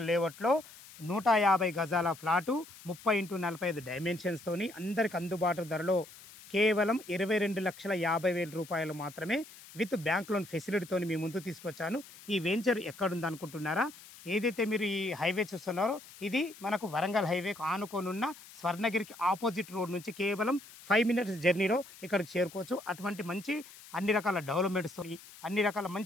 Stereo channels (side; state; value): left; noise; hiss, 19 dB below the sound